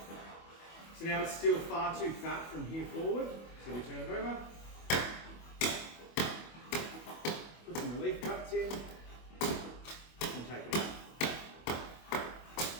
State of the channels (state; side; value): late; right; 25 ms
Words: So now it's still far too fat from here forward, so we turn it over. Put some relief cuts in, and take it out.